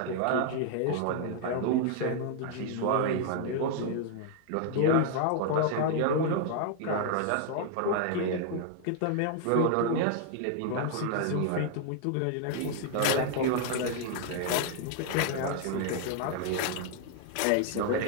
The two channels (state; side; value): different; both; correlation 0.00